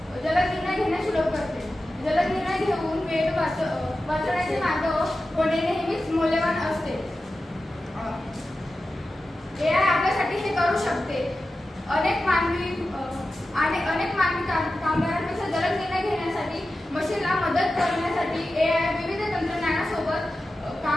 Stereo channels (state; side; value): normal; both; correlation 0.93